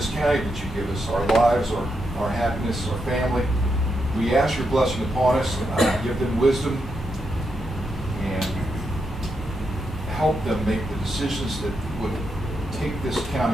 county that you give us, our lives, our happiness, our family. We ask your blessing upon us, give them wisdom, and help them make the decisions that would take this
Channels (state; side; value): normal; both; correlation 0.83